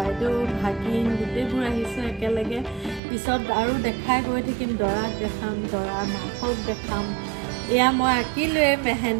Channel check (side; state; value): left; drops out; at 3.0 s